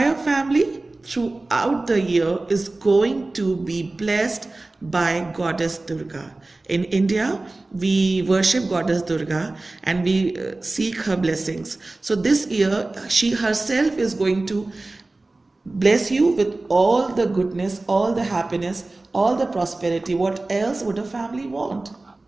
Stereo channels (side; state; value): left; quieter; 3.1 dB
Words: family throughout the year is going to be blessed by Goddess Durga. In India, we worship Goddess Durga and we seek her blessings. So this year, she herself is going to bless you with all the goodness, all the happiness, all the prosperity. What else would a family want?